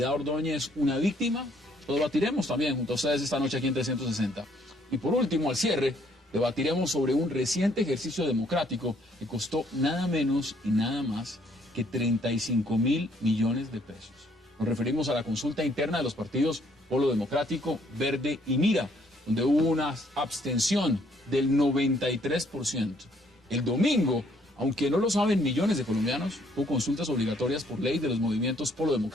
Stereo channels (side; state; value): both; normal; correlation 0.66